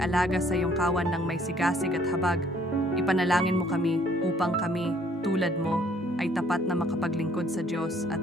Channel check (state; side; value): normal; both; correlation 0.61